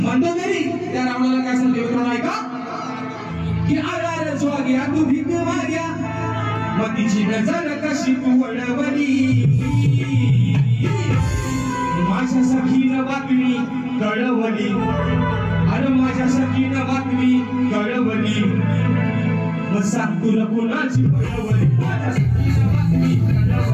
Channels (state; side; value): identical; both; correlation 1.00